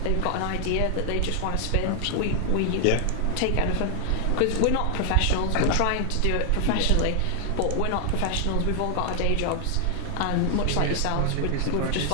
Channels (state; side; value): different; both; correlation 0.00